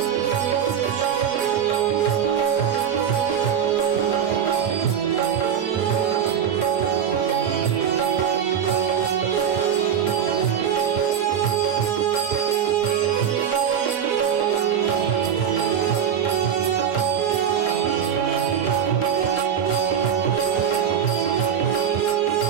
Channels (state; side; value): quieter; left; 8.4 dB